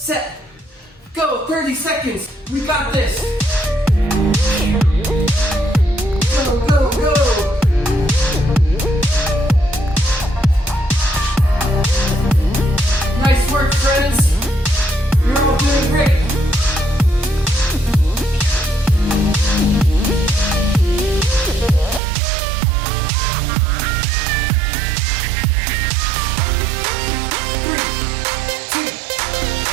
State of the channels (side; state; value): left; drops out; at 22.0 s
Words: go. 30 seconds, we got this. Go, go, go. Nice work, friends. You're all doing great.